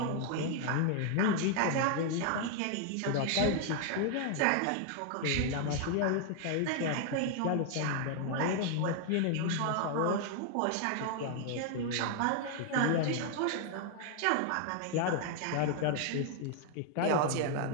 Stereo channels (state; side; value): different; both; correlation 0.00